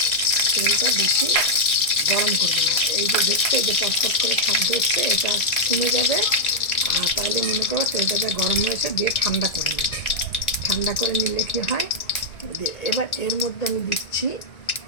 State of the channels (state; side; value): late; right; 1.9 ms